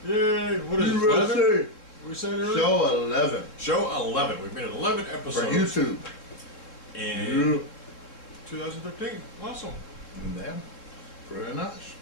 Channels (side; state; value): right; late; 3.6 ms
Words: Yay, what is it, USA. 11? We said earlier? Show 11. Show 11. We've made 11 episodes. For YouTube. In 2013. Awesome. Yeah. Pretty nice.